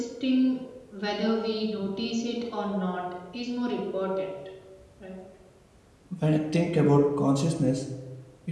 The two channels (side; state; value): both; identical; correlation 1.00